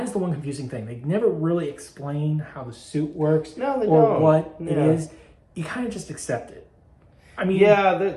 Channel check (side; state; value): both; identical; correlation 1.00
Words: is the one confusing thing. They never really explain how the suit works or what it is. You kind of just accept it. I mean, yeah,